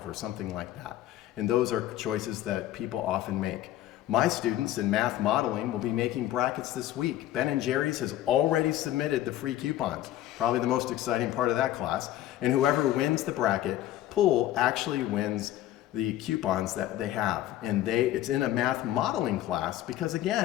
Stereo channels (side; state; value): right; quieter; 13.5 dB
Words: or something like that. And those are choices that people often make. My students in math modeling will be making brackets this week. Ben & Jerry's has already submitted the free coupons, probably the most exciting part of that class. And whoever wins the bracket pool actually wins the coupons that they have. And it's in a math modeling class because,